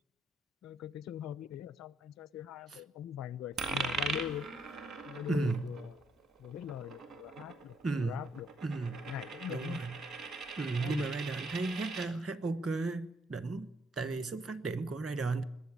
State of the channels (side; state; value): both; normal; correlation 0.72